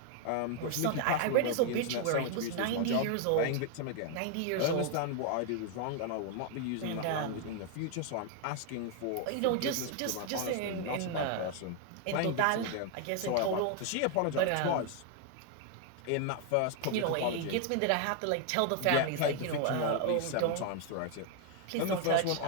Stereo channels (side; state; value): both; different; correlation 0.00